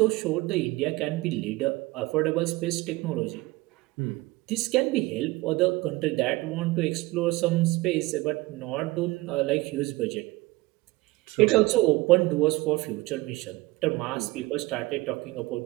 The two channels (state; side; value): quieter; left; 20.7 dB